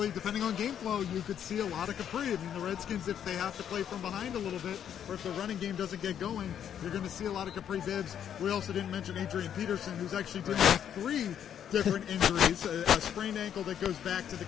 depending on game flow, you could see a lot of Capri. I mean, the Redskins, if they have to play from behind a little bit, or if the running game doesn't get going, you're going to see a lot of Capri Bibbs. We also didn't mention Adrian Peterson, who's actually dealing with 3 different injuries, a sprained ankle that goes back to the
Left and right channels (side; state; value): right; quieter; 9.3 dB